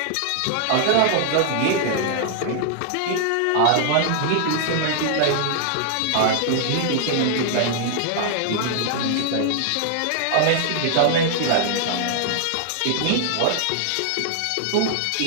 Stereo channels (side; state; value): both; different; correlation 0.00